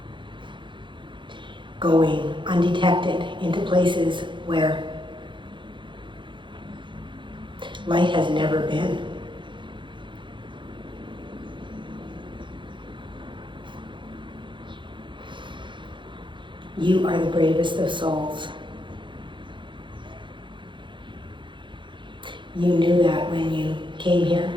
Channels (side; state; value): left; late; 0.23 ms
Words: going undetected into places where light has never been. You are the bravest of souls. You knew that when you came here.